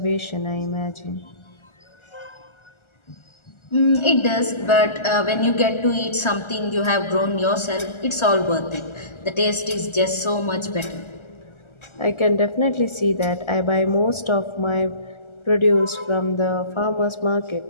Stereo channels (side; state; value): right; late; 1.4 ms